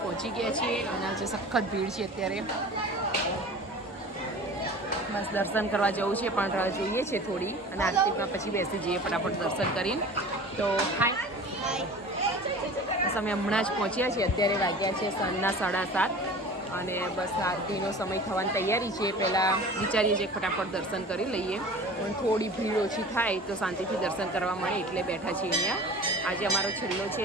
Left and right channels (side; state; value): both; normal; correlation 0.40